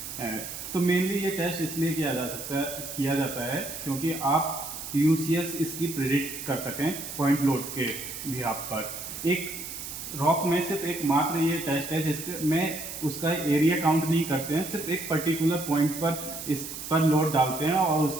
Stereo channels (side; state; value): right; noise; hiss, 8 dB below the sound